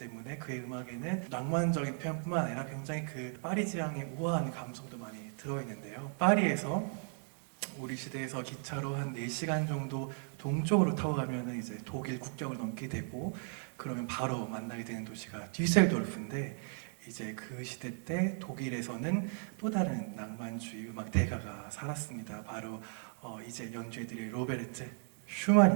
그의 음악에는 낭만적인 표현뿐만 아니라 굉장히 그 파리 지향의 우아한 감성도 많이 들어있는데요. 파리에서 우리 시대에서 기차로 한 4시간 정도 동쪽으로 타고 가면은 이제 독일 국경을 넘게 되고 그러면 바로 만나게 되는 도시가 뒤셀도르프인데 이제 그 시대 때 독일에서는 또 다른 낭만주의 음악 대가가 살았습니다. 바로 이제 연주해드릴 로베르트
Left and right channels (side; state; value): left; silent; 54 dB below the other